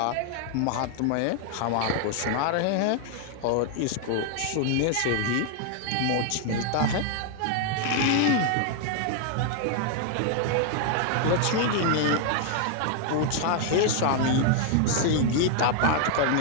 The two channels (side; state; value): both; different; correlation 0.00